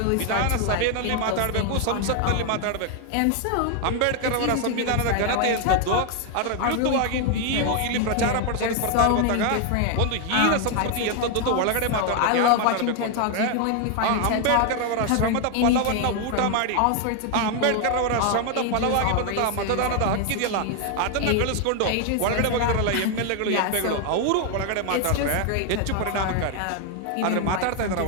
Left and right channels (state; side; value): different; both; correlation 0.01